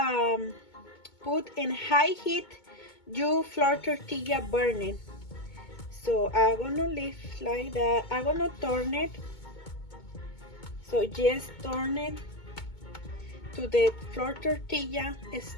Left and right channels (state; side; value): late; right; 2.2 ms